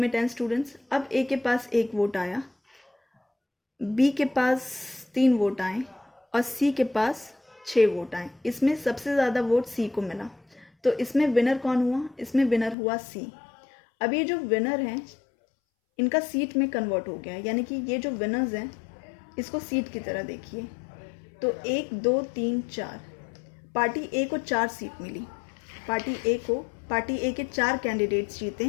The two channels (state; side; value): drops out; right; at 12.8 s